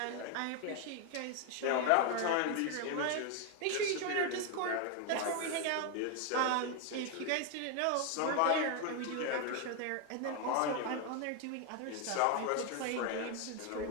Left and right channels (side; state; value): both; different; correlation 0.01